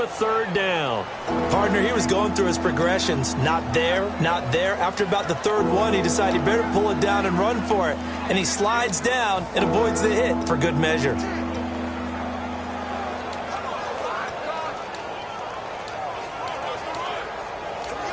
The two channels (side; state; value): both; identical; correlation 1.00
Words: a 3rd down. Partner, he was going through his progressions. Not there, not there. After about the 3rd one, he decided he better pull it down and run for it. And he slides down and avoids the hit for good measure.